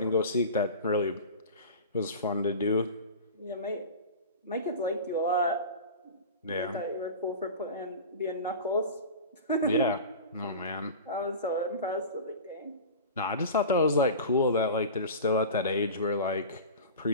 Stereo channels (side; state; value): both; inverted; correlation -0.32